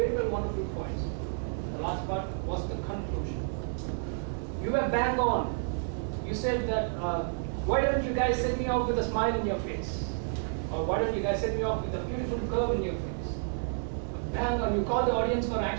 well, wonderful points. The last part was the conclusion. You were bang on. You said that, why don't you guys set me off with a smile in your face? Or why don't you guys set me off with a beautiful curve in your face? Bang on, you call the audience for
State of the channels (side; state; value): left; silent; 58 dB below the other